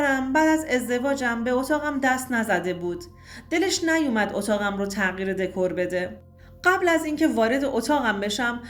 بعد از ازدواجم به اتاقم دست نزده بود. دلش نیومد اتاقم رو تغییر دکور بده. قبل از اینکه وارد اتاقم بشم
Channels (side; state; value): both; identical; correlation 1.00